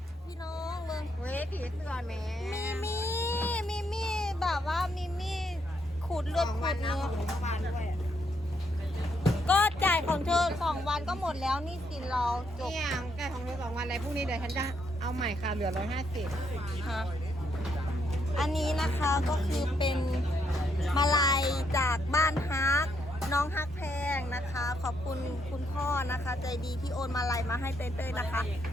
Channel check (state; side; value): normal; both; correlation 0.75